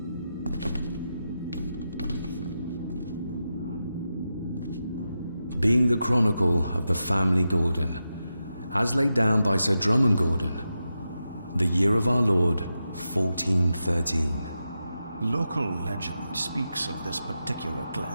Being the chronicle of the family Gordon, as laid down by Sir Drummond Gordon, the year of our Lord, 1413. Local legend speaks of this particular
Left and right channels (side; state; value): both; inverted; correlation -0.89